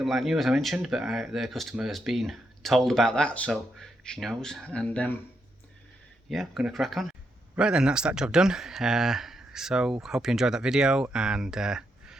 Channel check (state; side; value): normal; both; correlation 0.81